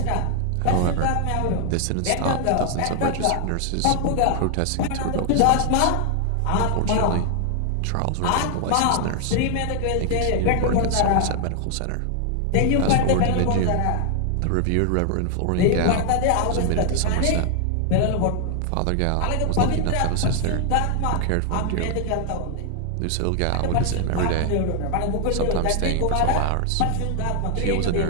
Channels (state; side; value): different; both; correlation 0.00